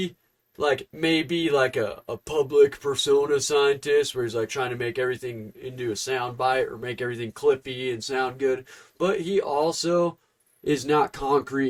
like may be like a public persona scientist where he's like trying to make everything into a sound bite or make everything clippy and sound good, but he also is not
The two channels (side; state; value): both; identical; correlation 1.00